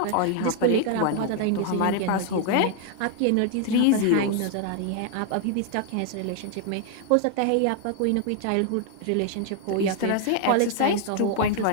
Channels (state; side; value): different; both; correlation 0.00